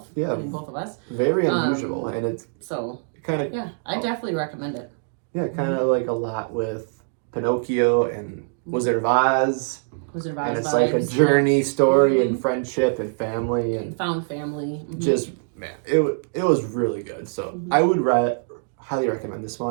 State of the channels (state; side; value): silent; left; digital silence